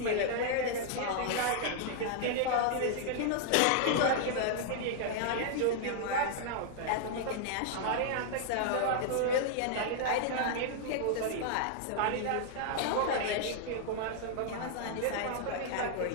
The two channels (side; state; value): both; different; correlation 0.00